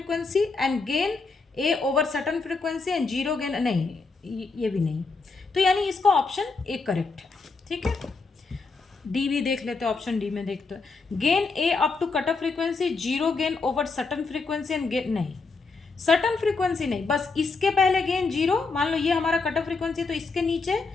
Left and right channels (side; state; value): right; quieter; 4.2 dB